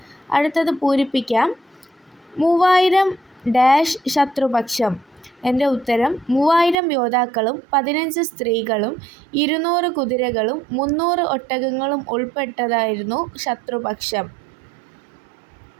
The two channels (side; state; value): left; drops out; at 6.8 s